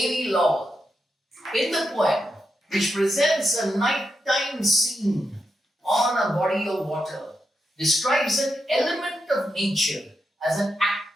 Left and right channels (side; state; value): both; normal; correlation 0.85